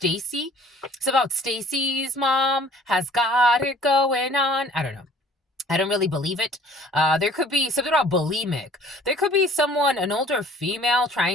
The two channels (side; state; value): both; normal; correlation 0.52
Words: It's about Stacy's mom has got it going on. I don't know. I don't really believe it. There could be something about bulimic. There could be someone, an older female,